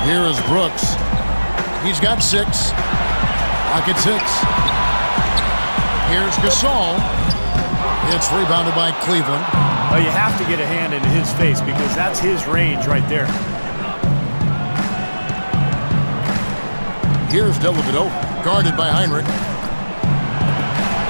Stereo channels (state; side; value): inverted; both; correlation -1.00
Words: Here is Brooks. He's got 6. Pocket 6. Here's Gasol. It's rebounded by Cleveland. Well, you have to get a hand into his face because that's his range right there. Here's Dellavedova, guarded by Heinrich.